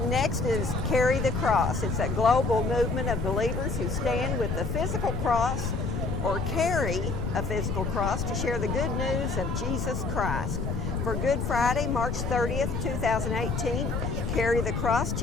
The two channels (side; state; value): left; noise; rumble, 2 dB below the sound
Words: next is Carry the Cross. It's a global movement of believers who stand with the physical cross or carry a physical cross to share the good news of Jesus Christ. For Good Friday, March 30th, 2018, Carry the Cross